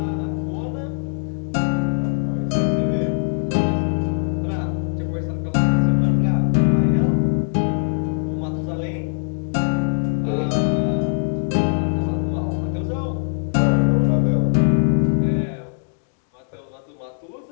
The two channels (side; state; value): right; silent; digital silence